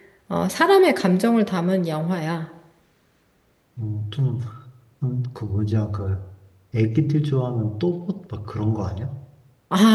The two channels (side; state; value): both; identical; correlation 1.00